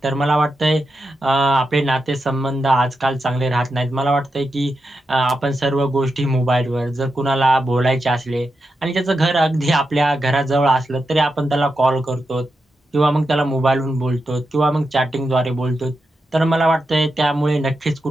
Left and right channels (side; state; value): both; normal; correlation 0.87